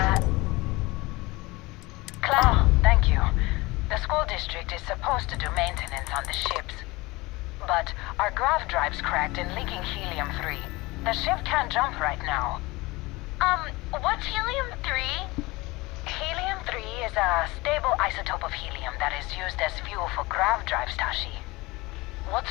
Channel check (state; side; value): quieter; right; 22.2 dB